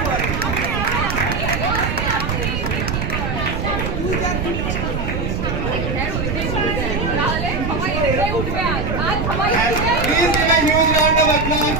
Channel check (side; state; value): right; noise; rumble, 2 dB below the sound